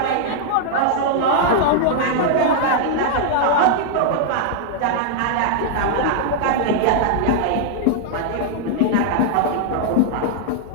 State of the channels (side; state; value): both; different; correlation -0.01